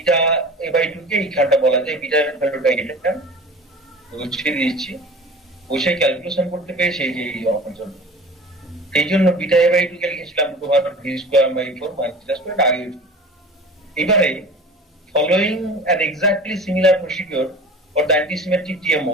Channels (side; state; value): both; normal; correlation 0.39